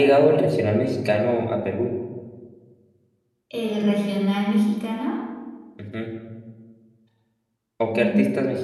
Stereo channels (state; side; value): identical; both; correlation 1.00